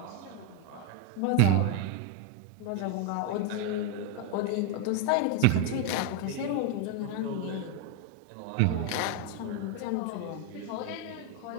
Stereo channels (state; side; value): different; both; correlation 0.02